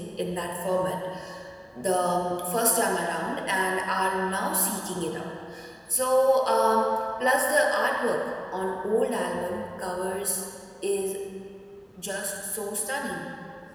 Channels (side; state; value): both; identical; correlation 1.00